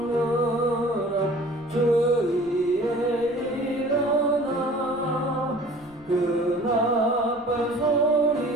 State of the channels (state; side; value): noise; left; rumble, 27 dB below the sound